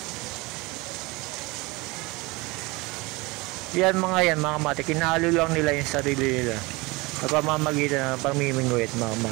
Yan mga kamatik, kinahalo lang nila yung sarili nila sa pamamagitan ng pamimingwit mga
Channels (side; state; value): left; quieter; 24.1 dB